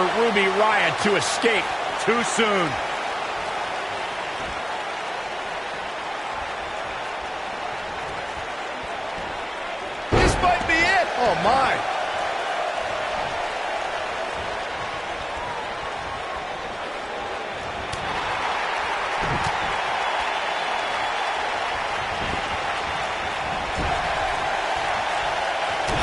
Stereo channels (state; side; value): identical; both; correlation 1.00